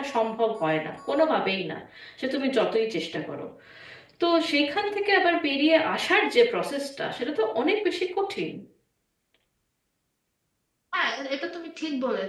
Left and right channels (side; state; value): both; identical; correlation 1.00